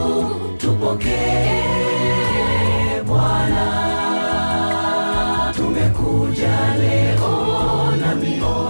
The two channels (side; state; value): both; inverted; correlation -1.00